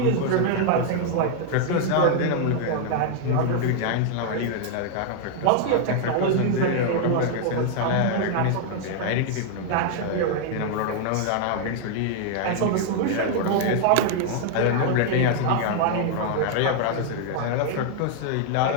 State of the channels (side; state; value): both; different; correlation 0.00